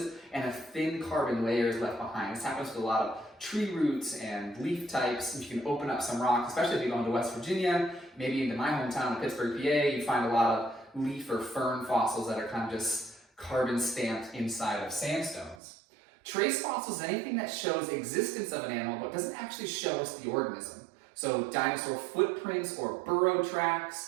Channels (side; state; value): left; drops out; at 15.6 s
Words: and a thin carbon layer is left behind. This happens with a lot of tree roots and leaf types. If you can open up some rock, especially if you go into West Virginia, maybe into my hometown of Pittsburgh, PA, you find a lot of leaf or fern fossils that are kind of just carbon stamped inside of sandstones. Trace fossils is anything that shows existence of an animal but doesn't actually show us the organism. So dinosaur footprints or burrow